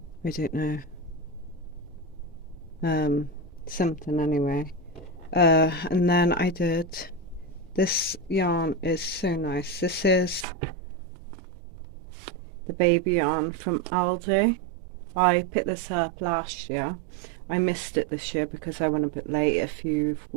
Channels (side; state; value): left; drops out; at 10.5 s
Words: I don't know, something anyway. And then I did, this yarn is so nice. This is the baby yarn from Aldi. I picked this up last year. I missed it this year because I went a bit late. If you've